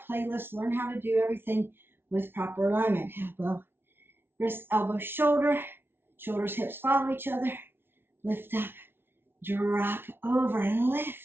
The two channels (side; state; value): left; late; 0.11 ms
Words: playlist. Learn how to do everything with proper alignment. Elbow, wrist, elbow, shoulder. Shoulders, hips follow each other. Lift up. Drop over and